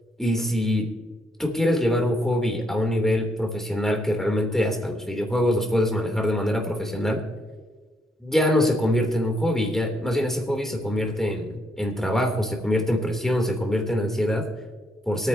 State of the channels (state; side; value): normal; both; correlation 0.74